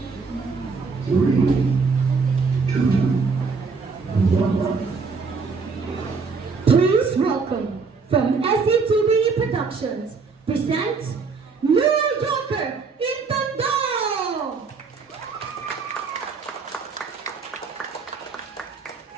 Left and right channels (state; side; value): quieter; left; 4.8 dB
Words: Please welcome from SCTV Productions presents New Yorker in Tondo!